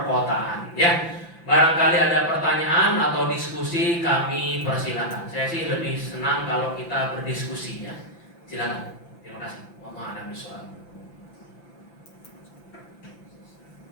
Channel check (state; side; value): late; right; 5.9 ms